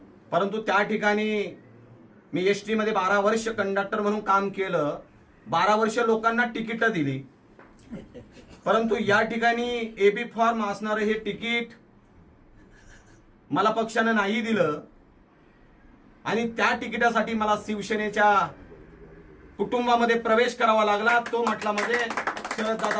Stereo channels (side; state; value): both; identical; correlation 1.00